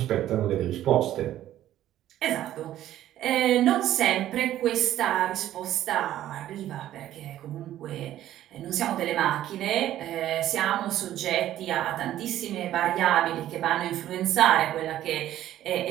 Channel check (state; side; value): quieter; left; 12.8 dB